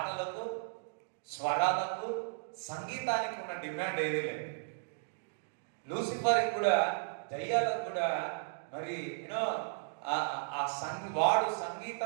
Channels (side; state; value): left; silent; digital silence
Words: స్వరాలకు, సంగీతానికి ఉన్న డిమాండ్ ఏది లేదు. లూసిఫర్కి కూడా, దయ్యాలకు కూడా మరి యూనో వాడు